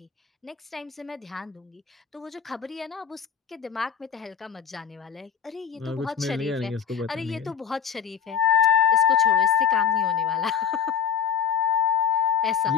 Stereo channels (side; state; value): right; quieter; 7.3 dB